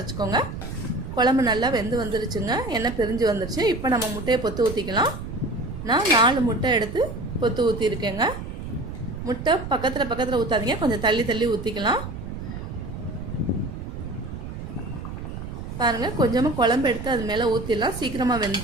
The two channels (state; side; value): noise; right; rumble, 8 dB below the sound